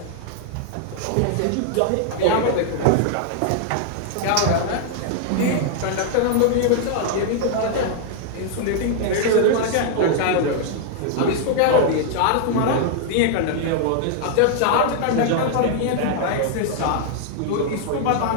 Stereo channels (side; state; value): both; different; correlation -0.01